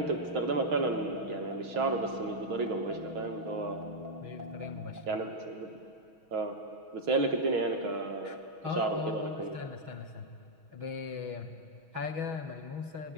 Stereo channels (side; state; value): left; late; 6.3 ms